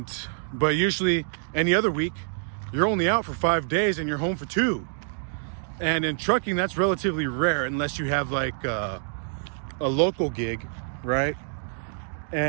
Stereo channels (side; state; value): left; silent; digital silence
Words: usually, any other week, you're only out for 5 days and you're home for 2. And in trucking, that's relatively rare unless you have like a local gig, right?